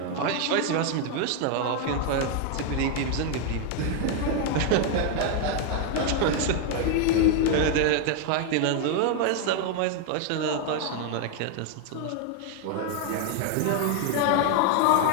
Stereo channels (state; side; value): different; both; correlation 0.01